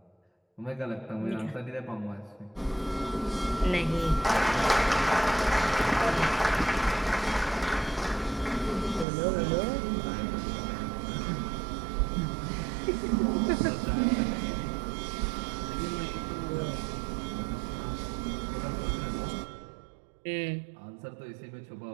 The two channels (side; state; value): left; drops out; at 9.1 s